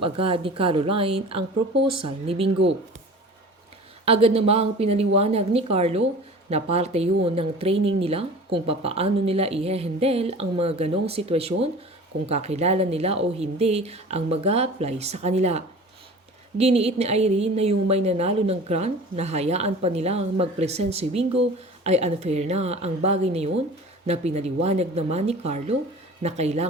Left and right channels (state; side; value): normal; both; correlation 0.40